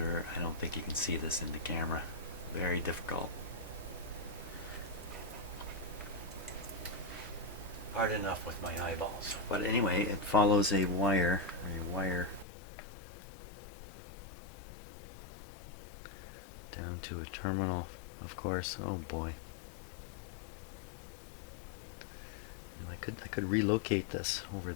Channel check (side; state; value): right; drops out; at 12.5 s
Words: I don't think you can see this in the camera. Very difficult. Hard enough with my eyeballs. But anyway, it follows a wire down to a terminal, of course. Oh boy. I could relocate this over